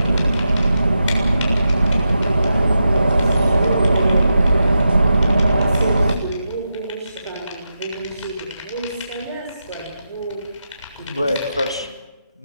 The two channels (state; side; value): inverted; both; correlation -0.88